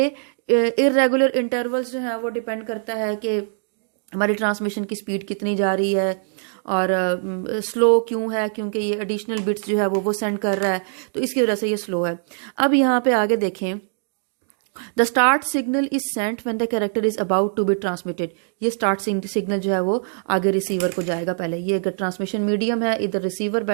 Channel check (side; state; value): left; silent; digital silence